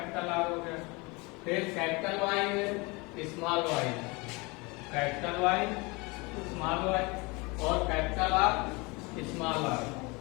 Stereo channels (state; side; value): quieter; right; 26.5 dB